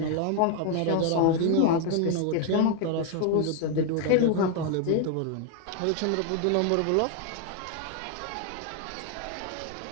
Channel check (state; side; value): different; both; correlation 0.01